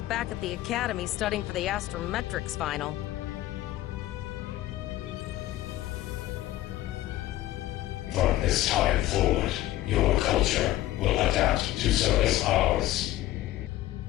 back at the academy studying for the astrometrics final. From this time forward, your culture will adapt to service ours.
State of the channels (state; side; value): quieter; right; 15.3 dB